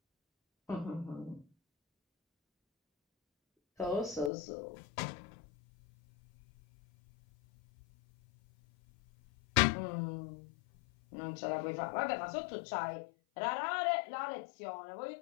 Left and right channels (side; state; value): right; drops out; at 4.3 s